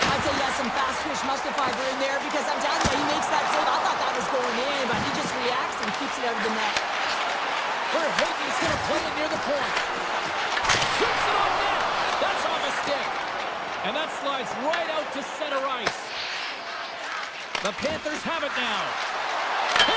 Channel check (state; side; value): identical; both; correlation 1.00